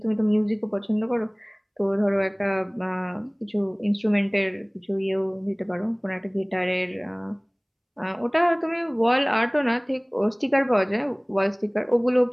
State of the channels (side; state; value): both; identical; correlation 1.00